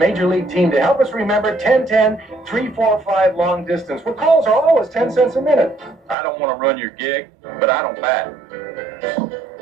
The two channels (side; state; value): left; drops out; at 6.2 s